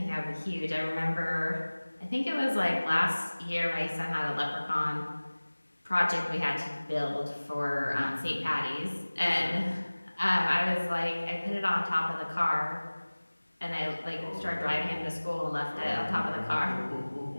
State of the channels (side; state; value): both; inverted; correlation -1.00